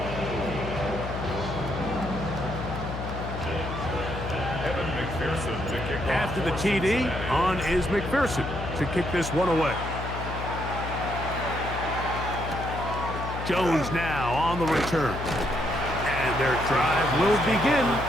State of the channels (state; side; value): noise; left; hum, 6 dB below the sound